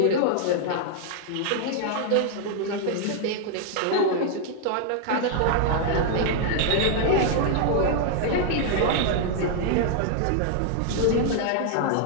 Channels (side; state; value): both; different; correlation 0.00